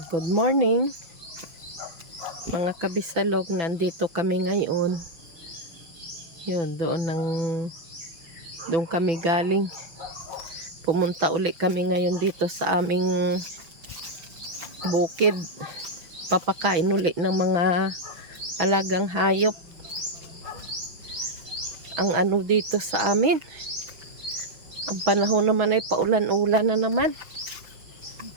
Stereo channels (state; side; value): late; left; 6.0 ms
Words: good morning mga kabisalog. Nandito kami ngayon. Yun, doon kami galing. Pumunta uli kami ngayon dito sa aming bukid. Papakain uli ng mga alagang hayop. Ang ano dito sa amin, ang panahon naman ay paulan-ulan na naman.